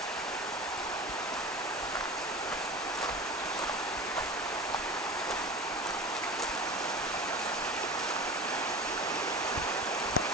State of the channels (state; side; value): normal; both; correlation 0.33